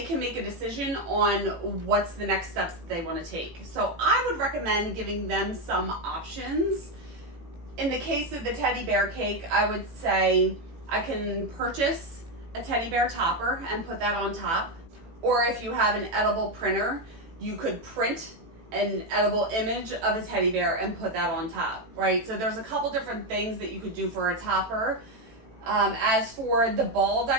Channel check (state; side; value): late; left; 18 ms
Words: can make a decision on what's the next steps that they want to take. So I would recommend giving them some options. In the case of the teddy bear cake, I would say I can purchase a teddy bear topper and put that on top. Or if you have an edible printer, you could print an edible image of a teddy bear and put that on top, right? So there's a couple different things that you could do for a topper. As for the ball